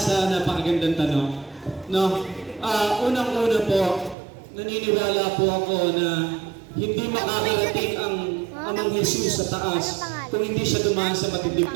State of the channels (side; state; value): left; drops out; at 4.2 s